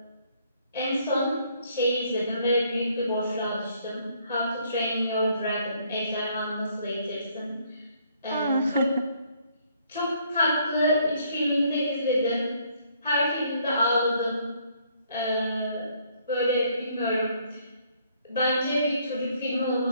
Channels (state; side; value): inverted; both; correlation -0.66